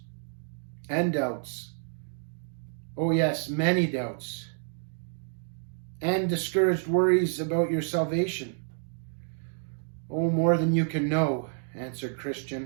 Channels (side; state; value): left; silent; digital silence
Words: and doubts. Oh yes, many doubts. And discouraged worries about your salvation. Oh, more than you can know, answered